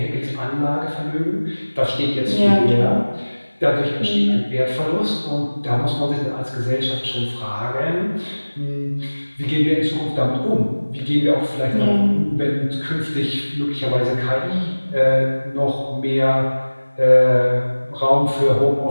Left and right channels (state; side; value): inverted; both; correlation -1.00